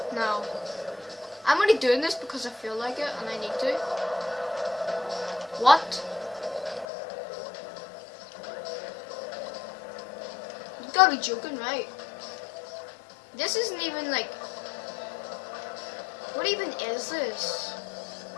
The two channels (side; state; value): right; drops out; at 6.9 s